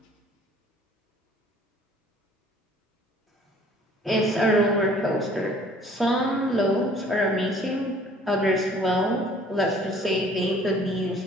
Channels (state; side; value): normal; both; correlation 0.54